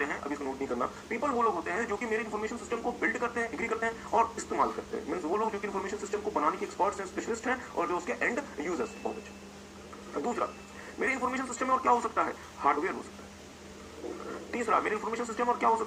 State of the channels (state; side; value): identical; both; correlation 1.00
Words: हैं, अभी इसको नोट नहीं करना, पीपल वो लोग होते हैं जो कि मेरे इंफॉर्मेशन सिस्टम को बिल्ड करते हैं, एग्री करते हैं और इस्तेमाल करते हैं। मींस वो लोग जो कि इंफॉर्मेशन सिस्टम को बनाने के एक्सपर्ट्स हैं, स्पेशलिस्ट हैं और जो उसके एंड यूजर्स हैं। बहुत अच्छा। दूसरा, मेरे इंफॉर्मेशन सिस्टम में और क्या हो सकता है, हार्डवेयर हो सकता है। तीसरा, मेरे इंफॉर्मेशन सिस्टम और क्या हो